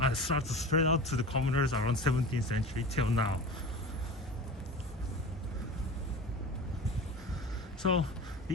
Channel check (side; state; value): both; normal; correlation 0.33